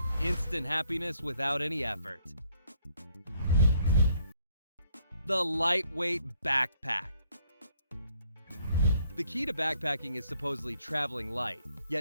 Instant happiness without any effort. The lightweight backpack. The key to backpacking is supposedly traveling light,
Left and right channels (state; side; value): inverted; both; correlation -0.67